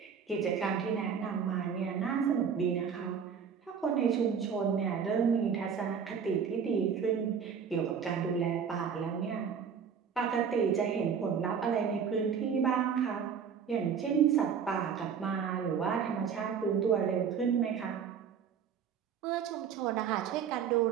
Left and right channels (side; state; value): left; quieter; 7.0 dB